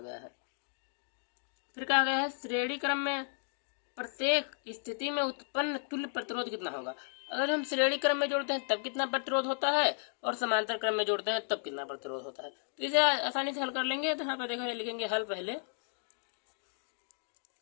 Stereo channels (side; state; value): right; silent; 55 dB below the other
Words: है। फिर कहा गया है श्रेणी क्रम में प्रत्येक स्थिति में उत्पन्न तुल्य प्रतिरोध कितना होगा। अगर हम श्रेणी क्रम में जोड़ते हैं तब कितना प्रतिरोध होता है और समांतर क्रम में जोड़ते हैं तब कितना प्रतिरोध होता है। तो इसे आसानी से हल कर लेंगे। तो यहाँ पर देखो, लिखेंगे हल पहले।